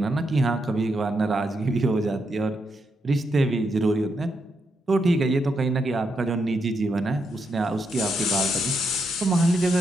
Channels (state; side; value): normal; both; correlation 0.81